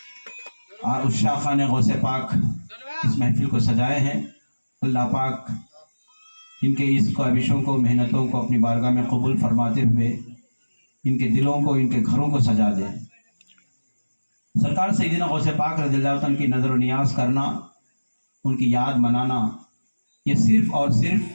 عشاقان غوث پاک اس محفل کو سجائے ہیں۔ اللہ پاک ان کے اس کاوشوں کو، محنتوں کو اپنی بارگاہ میں قبول فرماتے ہوئے ان کے دلوں کو، ان کے گھروں کو سجا دے۔ سرکار سیدنا غوث پاک رضی اللہ عنہ کی نظر و نیاز کرنا، ان کی یاد منانا، یہ صرف اور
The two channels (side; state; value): both; inverted; correlation -1.00